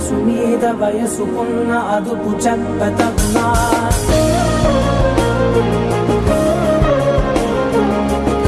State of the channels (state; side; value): identical; both; correlation 1.00